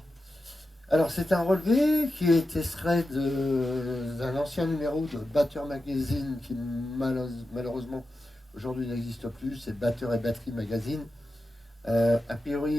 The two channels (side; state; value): both; normal; correlation 0.91